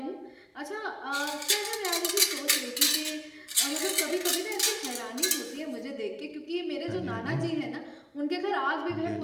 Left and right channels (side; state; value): both; identical; correlation 1.00